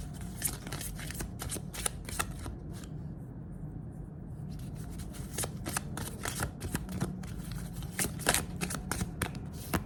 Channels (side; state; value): both; identical; correlation 1.00